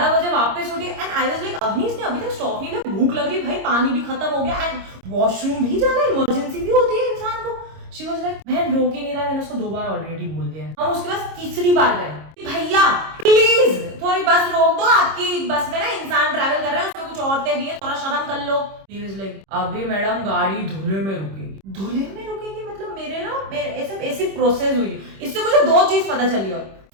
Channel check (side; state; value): left; late; 26 ms